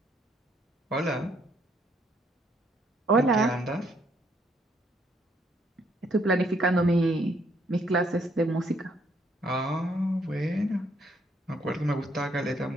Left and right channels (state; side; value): normal; both; correlation 0.69